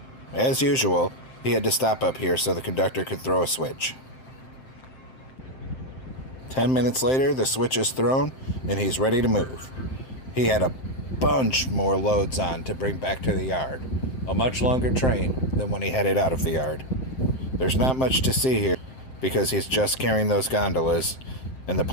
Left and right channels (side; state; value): right; late; 7.7 ms